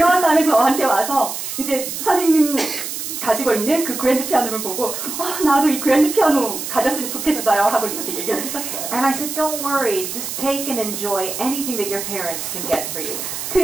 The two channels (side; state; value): right; noise; hiss, 6 dB below the sound